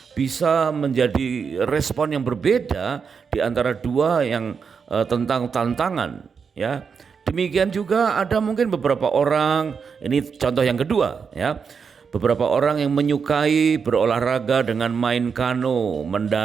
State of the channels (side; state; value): left; quieter; 6.0 dB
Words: bisa menjadi respon yang berbeda di antara dua yang tentang tantangan, ya. Demikian juga ada mungkin beberapa orang, ini contoh yang kedua, ya. Beberapa orang yang menyukai berolahraga dengan main kano,